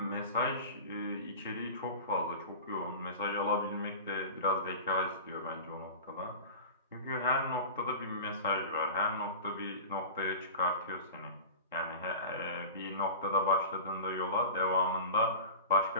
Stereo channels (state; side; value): inverted; both; correlation -0.33